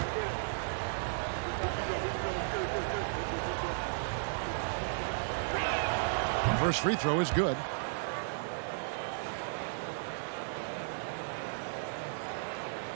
First free throw is good.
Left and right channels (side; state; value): left; silent; digital silence